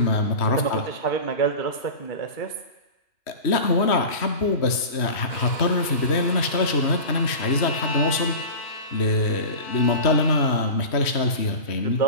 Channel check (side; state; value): right; late; 3.1 ms